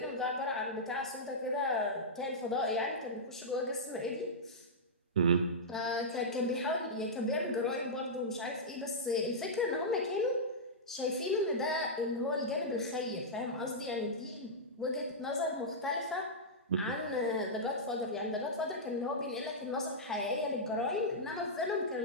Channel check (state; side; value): normal; both; correlation -0.11